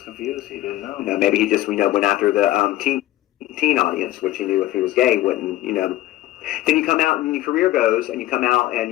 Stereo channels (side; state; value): right; quieter; 15.5 dB